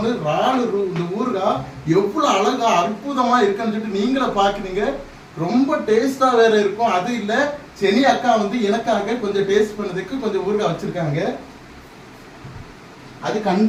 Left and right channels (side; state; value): both; identical; correlation 1.00